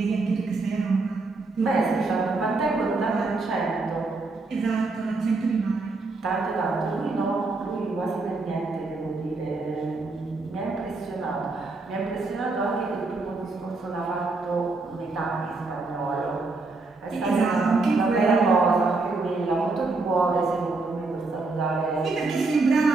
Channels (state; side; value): quieter; left; 3.6 dB